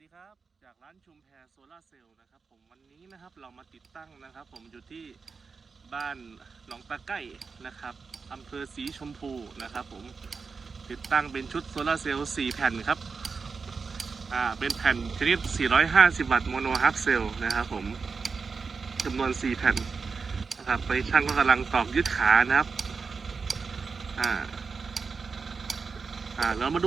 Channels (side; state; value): left; quieter; 4.9 dB